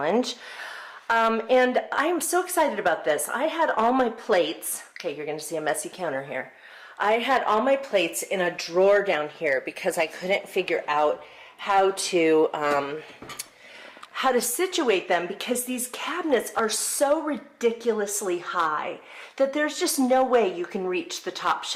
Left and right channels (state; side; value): identical; both; correlation 1.00